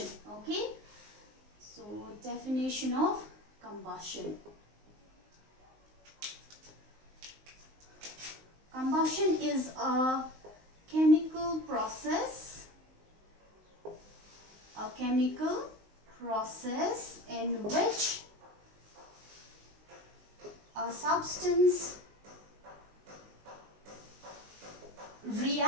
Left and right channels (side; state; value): left; late; 19 ms